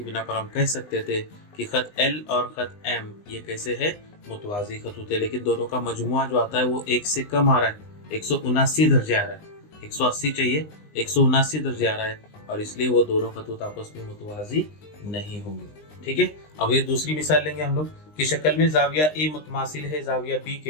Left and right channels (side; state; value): right; late; 20 ms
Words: बिना पर हम कह सकते थे कि खत L और खत M ये कैसे है, मुतवाज़ी खतूत है। लेकिन दोनों का मजमुआ जो आता है वो 1 से कम आ रहा है, 179 दर्जे आ रहा है, 180 चाहिए, 179 दर्जे आ रहा है, और इसलिए वो दोनों खतूत आपस में मुतवाज़ी नहीं होंगे। ठीक है, अब ये दूसरी मिसाल लेंगे हम लोग कि शक्ल में जाविया A मुतमासिल है जाविया B